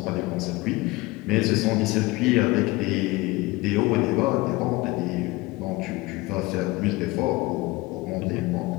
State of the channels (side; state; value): right; quieter; 21.9 dB